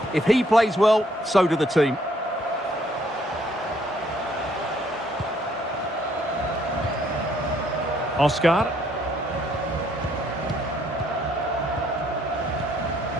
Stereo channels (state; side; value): normal; both; correlation 0.67